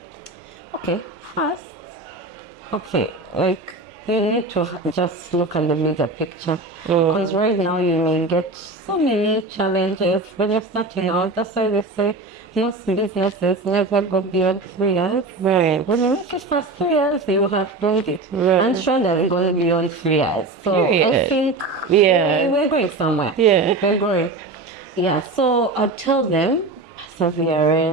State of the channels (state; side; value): quieter; left; 3.3 dB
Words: first, like, you need to just look at the bigger picture. Because right now you may get so many challenges when you're starting out. That's why they say most businesses never go beyond 3 years. Right. When you make it past 3 years, you have done it. Right. I'm sure that we're going beyond 3 years. So I think we're going somewhere. Yeah. We're going. Yeah. So I'd tell them